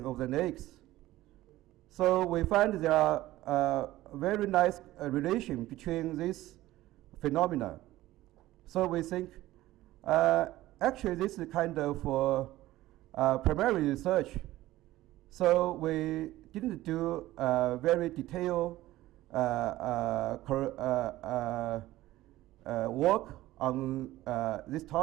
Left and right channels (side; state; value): left; quieter; 16.3 dB